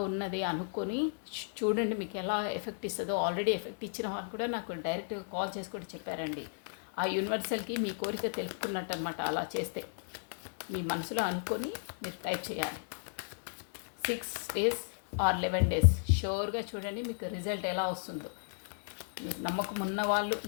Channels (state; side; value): silent; right; digital silence